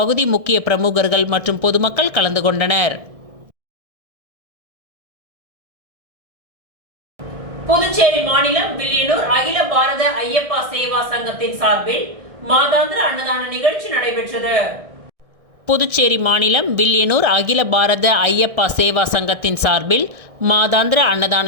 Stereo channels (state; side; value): late; left; 1.6 ms